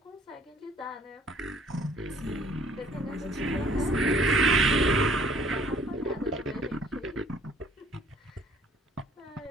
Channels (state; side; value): normal; both; correlation 0.58